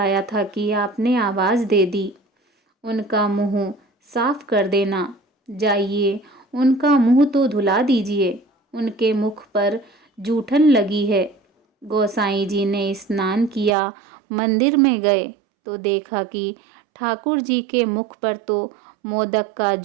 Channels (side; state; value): left; drops out; at 13.8 s